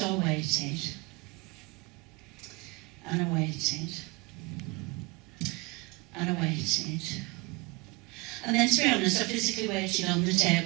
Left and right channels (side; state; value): left; quieter; 25.8 dB